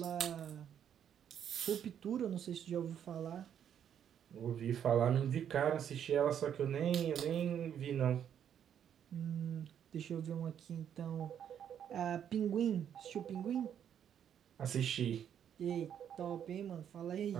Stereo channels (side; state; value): left; quieter; 9.1 dB